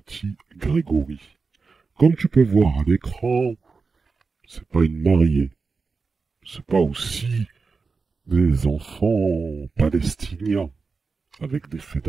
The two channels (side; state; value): left; quieter; 4.5 dB